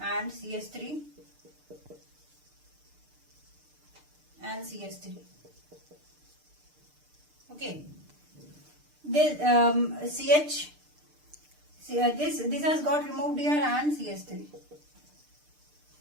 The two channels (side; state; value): left; late; 6.7 ms